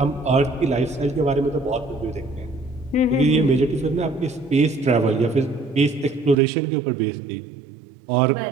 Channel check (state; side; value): drops out; left; at 6.4 s